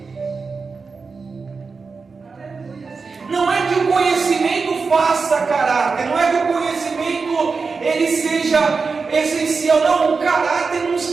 Não é que o conhecimento faça caráter, não é que o conhecimento ele seja essencial. Não, o caráter não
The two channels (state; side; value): quieter; left; 4.7 dB